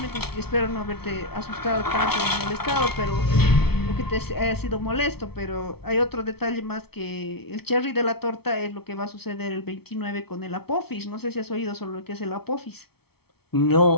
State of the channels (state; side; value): late; right; 0.96 ms